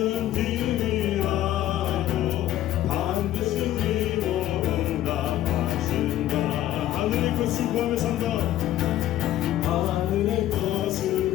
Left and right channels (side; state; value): right; quieter; 13.3 dB